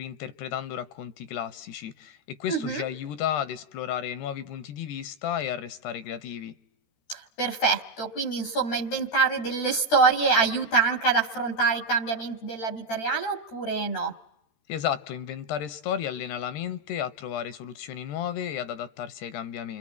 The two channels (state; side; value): late; right; 13 ms